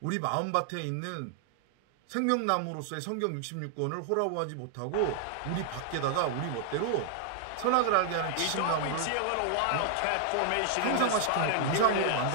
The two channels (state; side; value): different; both; correlation 0.00